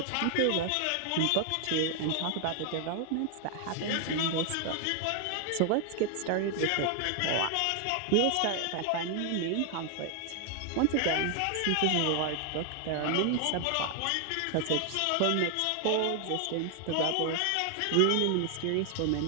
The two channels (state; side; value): different; both; correlation 0.00